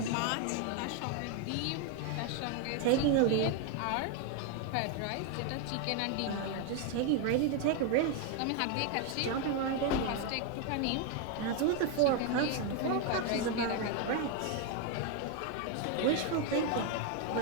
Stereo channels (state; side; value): different; both; correlation 0.01